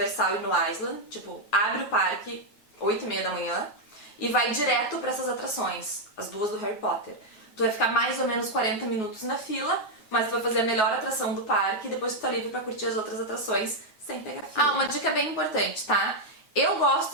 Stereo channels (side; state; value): right; late; 9.4 ms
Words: e no Island, tipo, abre o parque 8h30 da manhã e vai direto pra essas atrações, as duas do Harry Potter. Tu vai ficar mais ou menos 40 minutos na fila, mas tu vai fazer a melhor atração do parque e depois tu tá livre pra curtir as outras atrações sem pegar fila. Ah, uma dica bem importante, tá? Eu